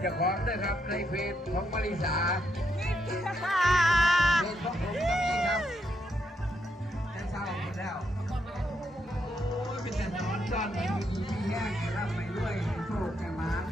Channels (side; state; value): both; normal; correlation 0.78